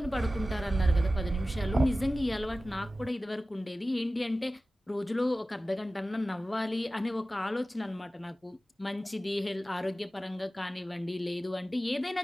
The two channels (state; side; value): normal; both; correlation 0.95